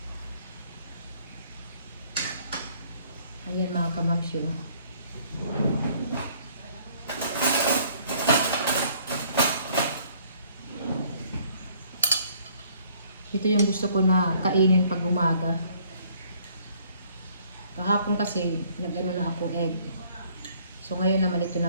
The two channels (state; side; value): inverted; both; correlation -0.60